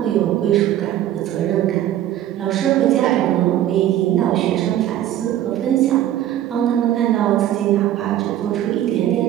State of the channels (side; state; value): left; quieter; 12.2 dB